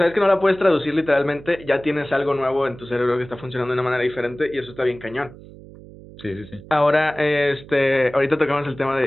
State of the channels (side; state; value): right; noise; hum, 19 dB below the sound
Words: que no la puedes traducir literalmente, ya tienes algo nuevo en tu cerebro que está funcionando de una manera diferente y eso está bien cañón. sí, sí, sí. Ahora, ahorita tocamos el tema de